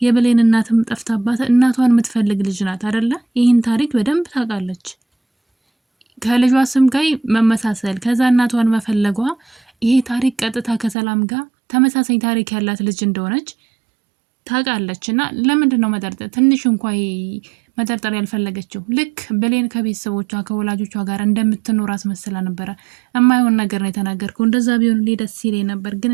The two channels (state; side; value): drops out; left; at 11.0 s